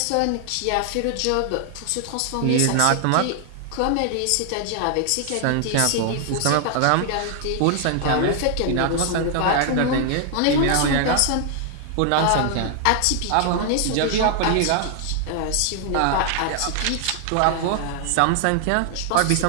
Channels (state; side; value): different; both; correlation 0.00